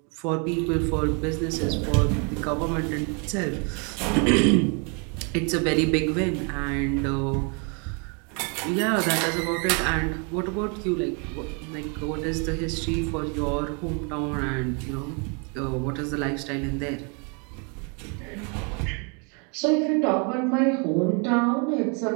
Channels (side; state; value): left; quieter; 35.4 dB